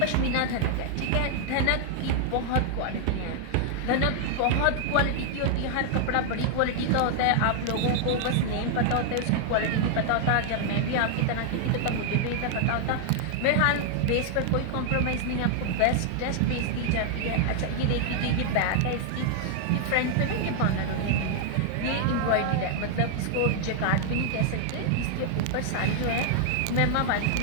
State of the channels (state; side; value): different; both; correlation 0.00